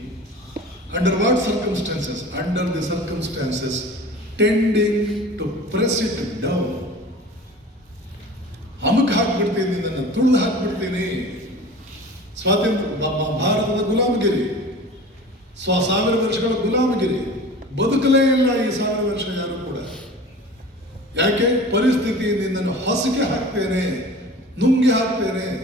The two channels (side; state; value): both; normal; correlation 0.39